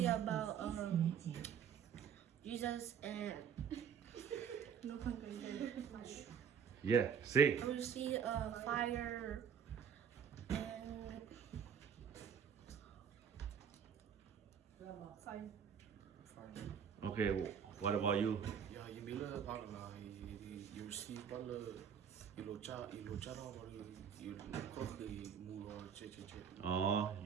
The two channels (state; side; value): quieter; left; 7.7 dB